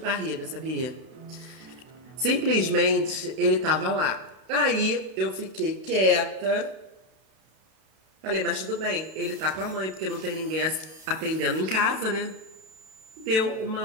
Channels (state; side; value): late; left; 32 ms